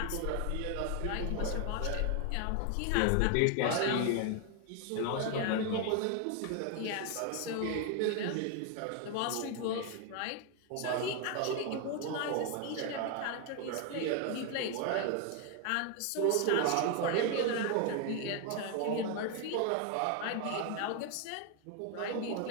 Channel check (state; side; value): different; both; correlation 0.00